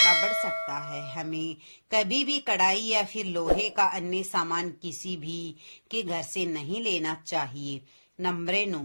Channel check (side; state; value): both; inverted; correlation -1.00